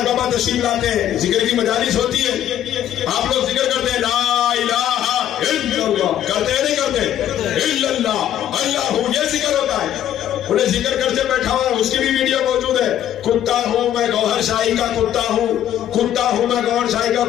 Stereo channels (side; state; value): right; quieter; 11.1 dB